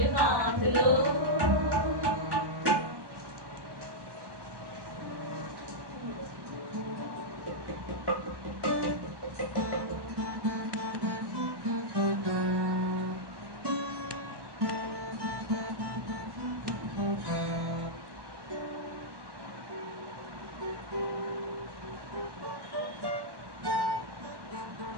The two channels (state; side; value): late; left; 1.1 ms